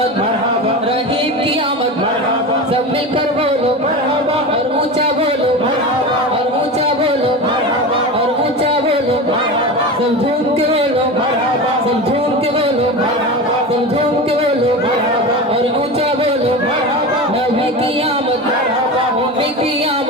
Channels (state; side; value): normal; both; correlation 0.26